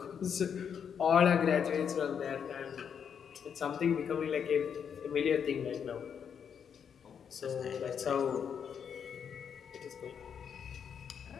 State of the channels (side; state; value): right; quieter; 7.5 dB